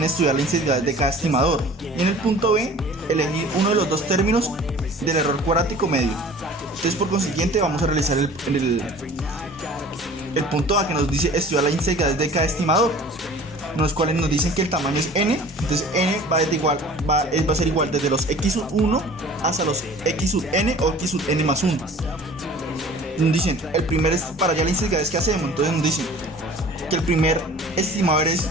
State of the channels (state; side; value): normal; both; correlation 0.45